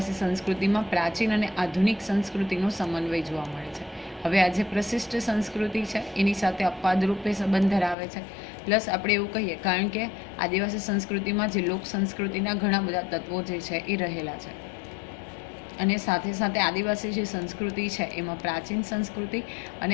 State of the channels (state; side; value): drops out; right; at 8.0 s